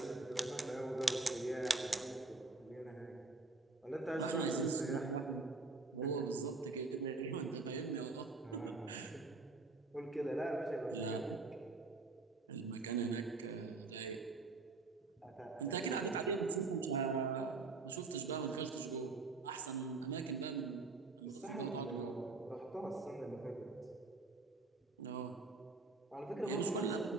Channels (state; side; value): quieter; left; 3.7 dB